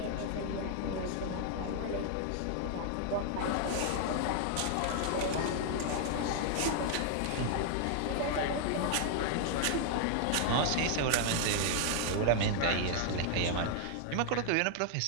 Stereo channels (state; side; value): different; both; correlation 0.00